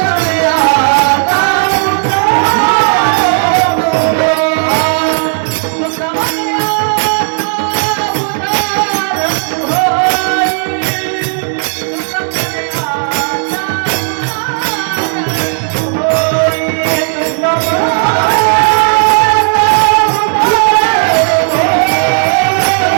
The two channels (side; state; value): left; silent; digital silence